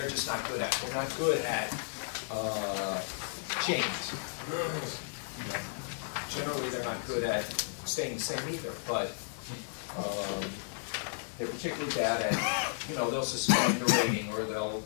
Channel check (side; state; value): right; silent; digital silence